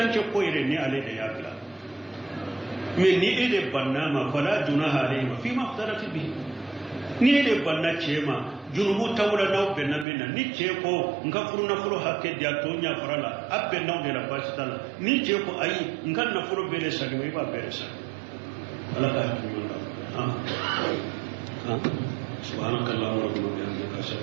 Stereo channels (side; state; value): left; drops out; at 10.1 s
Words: ko ire ni ale de yakla me ni ede banna ma fala junaha alayhi fi ma aftarati bi ni ede banna chema junubu tawla na be na bena ni che ko nga furu hake dia to nya farala abbe na de la basitala ni che ko ayi nga na furu bede saka me ba bede saka ala ka tuyo سبحانك اللهم ربنا وبحمدك اشهد